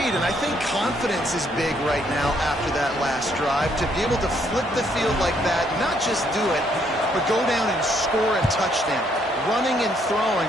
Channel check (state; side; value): normal; both; correlation 0.70